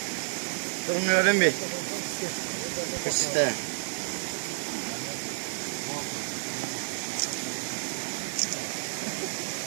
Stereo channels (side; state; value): left; silent; digital silence